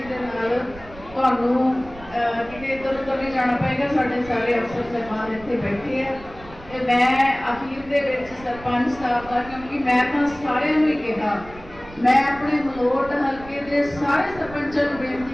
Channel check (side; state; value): right; noise; rumble, 18 dB below the sound